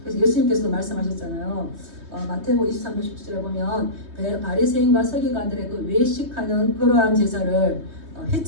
그래서 예수님께서도 말씀하셨잖아요. 마태복음 23장 17절에 보면 바리새인과 서기관들의 그 외식하는 그러한 제사를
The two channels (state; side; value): late; left; 3.2 ms